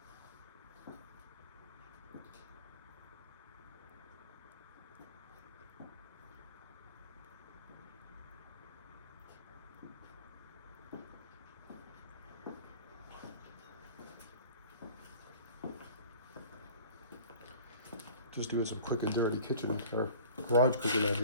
Just doing some quick and dirty kitchen or garage cooking out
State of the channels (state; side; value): inverted; both; correlation -0.46